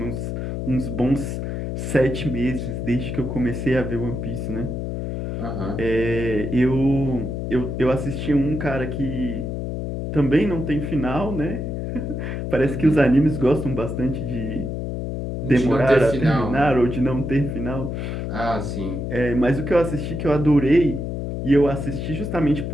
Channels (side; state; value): left; noise; hum, 4 dB below the sound